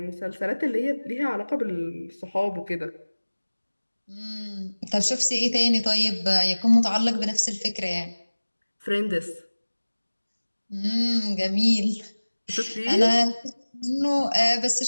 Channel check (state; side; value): inverted; both; correlation -1.00